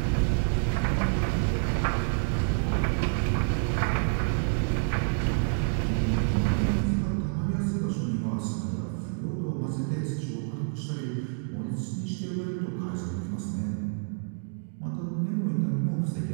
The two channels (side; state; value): left; silent; 59 dB below the other